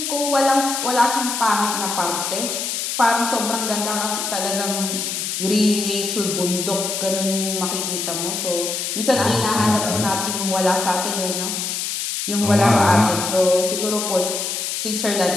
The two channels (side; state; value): left; noise; hiss, 3 dB below the sound